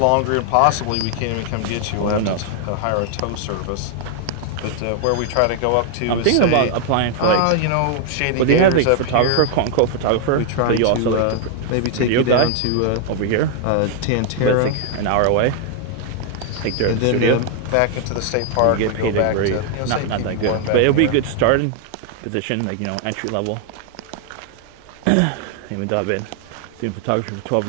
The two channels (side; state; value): both; different; correlation 0.00